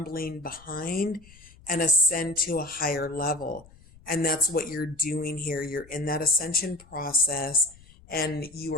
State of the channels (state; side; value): noise; left; rumble, 24 dB below the sound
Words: behind and ascend to a higher level. And that's what you're doing here. You're in that ascension process and you